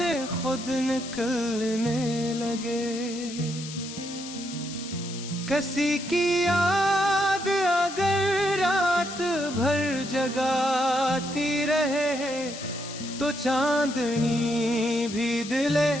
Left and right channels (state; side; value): noise; left; hiss, 11 dB below the sound